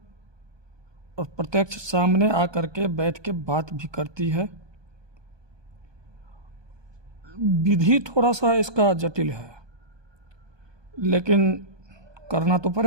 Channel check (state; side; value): late; left; 1.2 ms